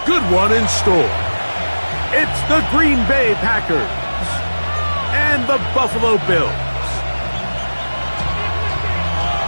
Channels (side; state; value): both; inverted; correlation -1.00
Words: good one in store. It's the Green Bay Packers and the Buffalo Bills.